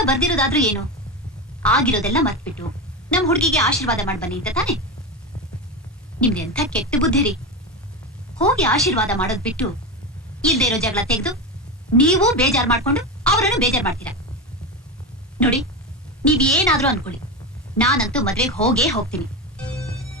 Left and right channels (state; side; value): normal; both; correlation 0.17